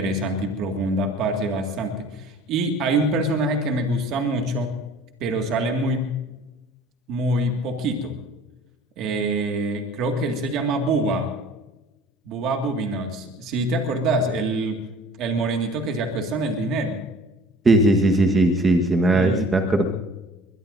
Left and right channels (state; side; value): normal; both; correlation 0.49